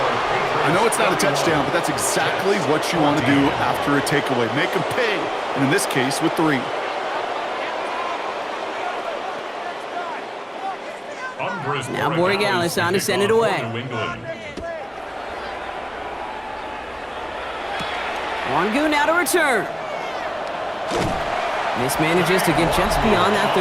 I know it's not a touchdown, but that's exactly what you want to do after a takeaway. Make them pay, and in this case, with 3. Now Borregalis on to send it away. Wangu now to return. Mismanages to get just beyond that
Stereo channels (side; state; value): both; identical; correlation 1.00